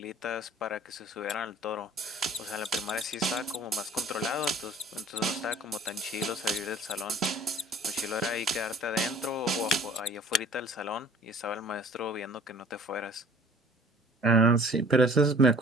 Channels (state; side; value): normal; both; correlation 0.50